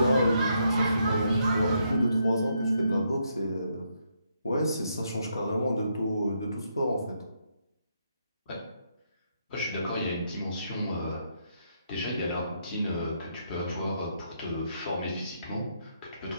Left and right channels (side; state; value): both; inverted; correlation -0.77